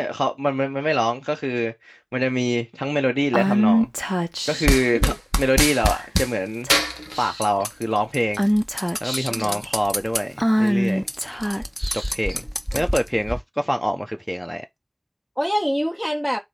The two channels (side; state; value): both; identical; correlation 1.00